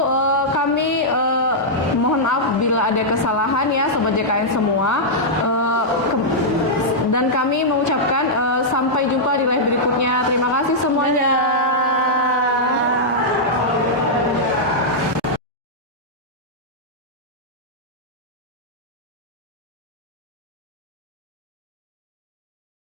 kami mohon maaf bila ada kesalahan ya, Sobat JKN semua. Dan kami mengucapkan sampai jumpa di live berikutnya. Terima kasih semuanya.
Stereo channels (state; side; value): normal; both; correlation -0.08